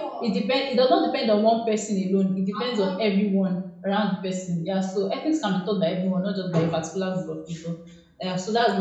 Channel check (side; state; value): both; identical; correlation 1.00